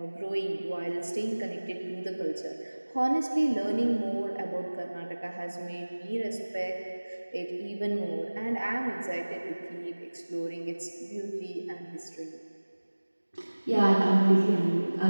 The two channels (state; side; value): inverted; both; correlation -1.00